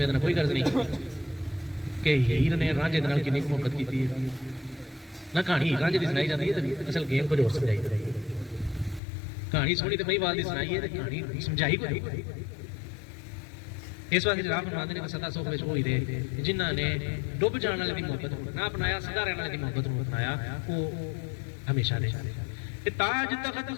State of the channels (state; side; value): drops out; right; at 9.0 s